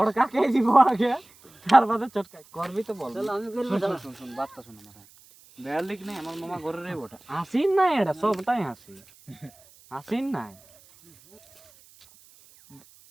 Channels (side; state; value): right; noise; hiss, 26 dB below the sound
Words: বড় কাকে দিব আগে তার বাদে চটকাই করবি তো বল শালা আমি করব শুন শালা শুন শুন বাতটা শুন আমার বেয়ার লিখ নাই আমার মামা ঘরে রে ওটা হাসিন নাই এটা সবটাই হাসি হাসিন নাই